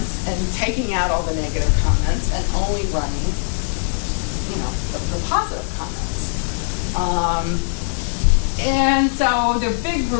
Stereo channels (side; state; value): right; silent; 65 dB below the other